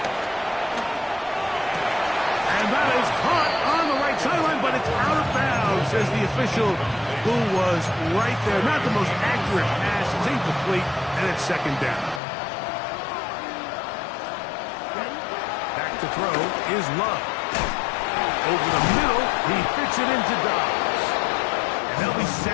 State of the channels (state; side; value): drops out; right; at 12.2 s